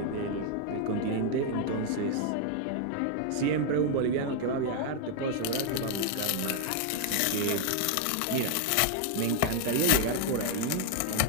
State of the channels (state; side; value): different; both; correlation 0.00